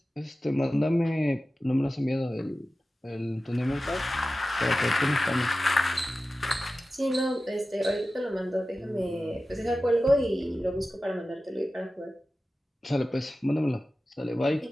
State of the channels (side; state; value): both; normal; correlation 0.95